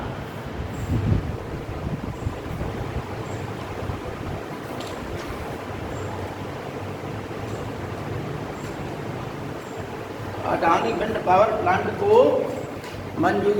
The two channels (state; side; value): identical; both; correlation 1.00